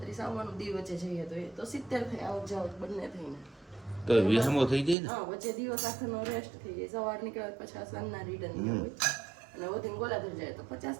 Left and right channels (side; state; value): left; drops out; at 5.0 s